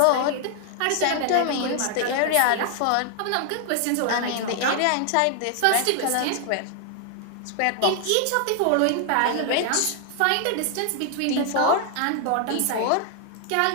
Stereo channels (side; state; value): both; different; correlation 0.00